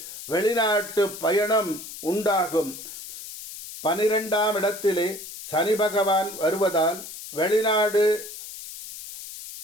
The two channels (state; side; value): noise; left; hiss, 12 dB below the sound